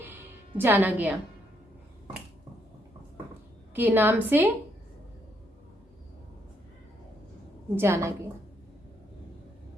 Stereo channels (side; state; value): both; normal; correlation 0.74